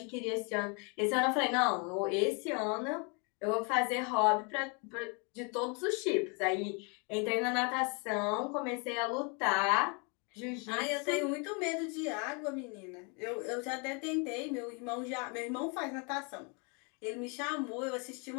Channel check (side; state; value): right; quieter; 34.4 dB